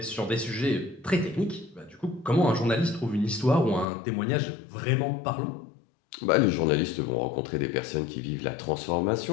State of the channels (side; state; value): right; drops out; at 3.9 s